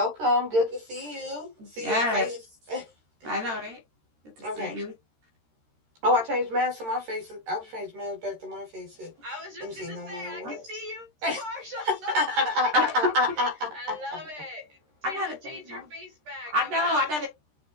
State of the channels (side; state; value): left; late; 13 ms